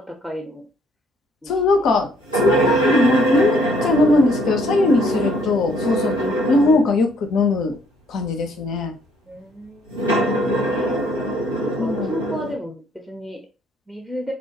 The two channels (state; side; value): normal; both; correlation 0.65